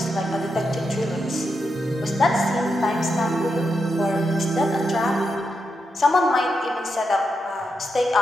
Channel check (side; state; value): both; normal; correlation 0.85